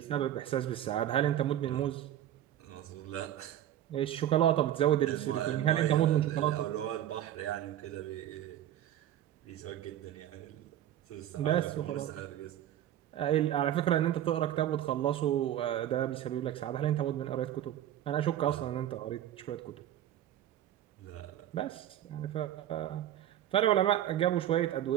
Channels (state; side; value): quieter; left; 11.7 dB